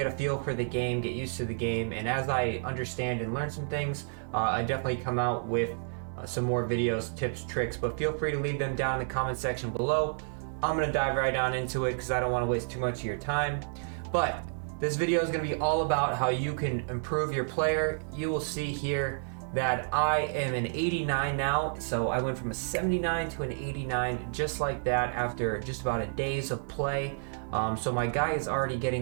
a feel for the game, get used to the game. And as I understand and learn some things, I definitely come out with some more videos, tips, tricks, but feel free to leave them down in the comment section below. I'm going to dive right on into it because I don't want to waste too much of your time. But this video is going to be all about how you can improve your player. You will see here that I am an 89 now. So I went from a 79 to an 89 just like that after just about a days of play. So my guy is already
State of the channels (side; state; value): left; silent; digital silence